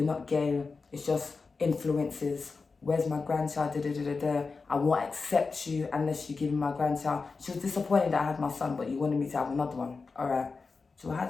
not gay, it's just influences. Where's my grandchild? Da, da, da, da, da. I won't accept you unless you give me my grandchild. She was disappointed that I had my son, but you wanted me to have another one. All right, so I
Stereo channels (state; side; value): quieter; right; 4.4 dB